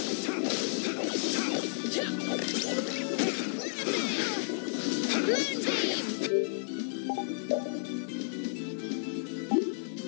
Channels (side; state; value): right; silent; digital silence